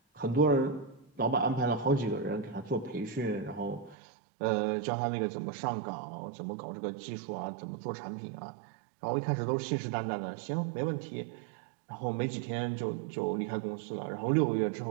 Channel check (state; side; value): drops out; left; at 4.0 s